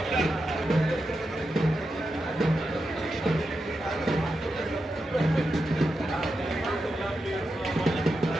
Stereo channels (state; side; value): normal; both; correlation 0.88